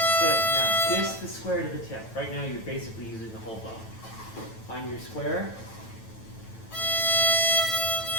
Good. Now just the square to the tip. Right now you're basically using the whole bow. Find your square.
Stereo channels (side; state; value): right; late; 9.1 ms